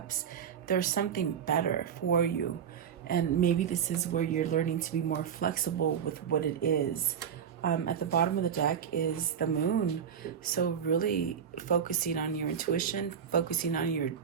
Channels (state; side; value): quieter; left; 7.9 dB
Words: there's something better for you. And maybe this is where you're learning to be more flexible with what it is. At the bottom of the deck is the Moon. So really focusing on your intuition, focusing on your